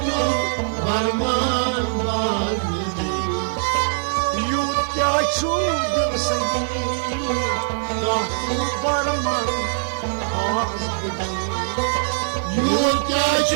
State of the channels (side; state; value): left; silent; digital silence